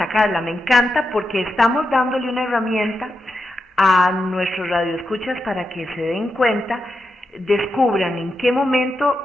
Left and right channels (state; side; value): normal; both; correlation 0.87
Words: Carla, me encanta porque estamos dándole una herramienta a nuestros radioescuchas para que se den cuenta, descubran en qué